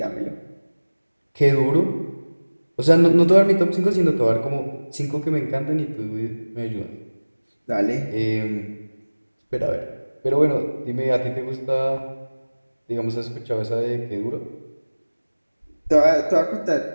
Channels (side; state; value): both; inverted; correlation -1.00